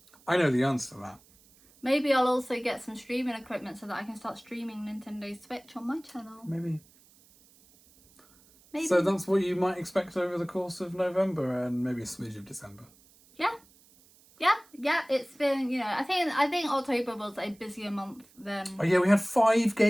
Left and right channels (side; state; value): right; noise; hiss, 28 dB below the sound